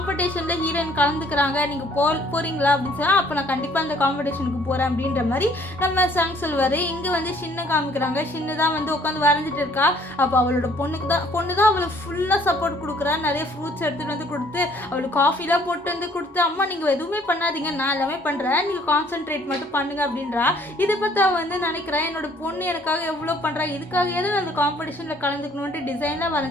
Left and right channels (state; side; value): normal; both; correlation 0.60